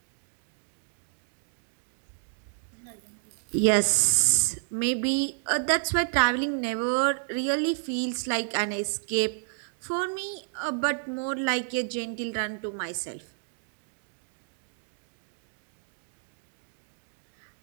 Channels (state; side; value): silent; left; digital silence